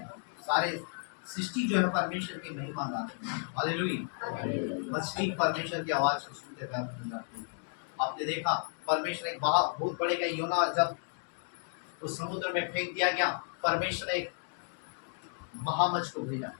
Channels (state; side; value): silent; right; 56 dB below the other